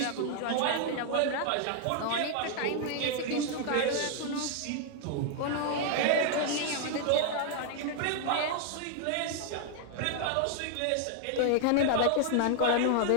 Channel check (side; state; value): both; different; correlation 0.00